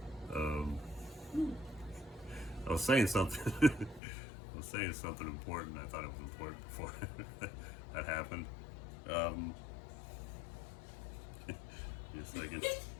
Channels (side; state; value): right; drops out; at 4.0 s